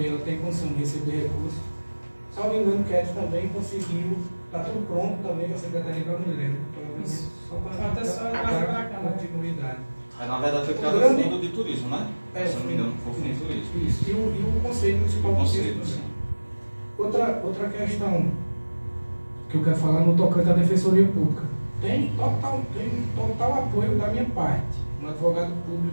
ela tem condição de receber recursos. Salvo engano, o Cat também conseguiu, está tudo pronto também com a Secretaria da Mulher. Só para a continuidade. Na verdade foi criado o Fundo de Turismo, né? Se não me engano, foi o Fundo de Turismo. Isso, e o Conselho Municipal de Turismo. Outra questão que eu quero falar no tocante à Defensoria Pública. Tem total apoio da minha parte, um advogado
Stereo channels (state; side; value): inverted; both; correlation -1.00